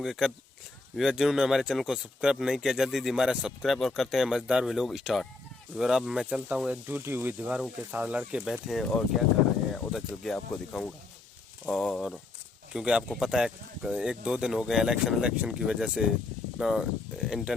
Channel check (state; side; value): quieter; right; 3.4 dB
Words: जिन्होंने हमारे चैनल को सब्सक्राइब नहीं किया जल्दी हमारा सब्सक्राइब और करते हैं मजेदार व्लॉग स्टार्ट। और अब मैं चलता हूं, एक टूटी हुई दीवारों के साथ लड़के बैठे हैं और क्या कर रहे हैं उधर चल के आपको दिखाऊंगा। और क्योंकि आपको पता है एक दो दिन हो गए इलेक्शन की वजह से ना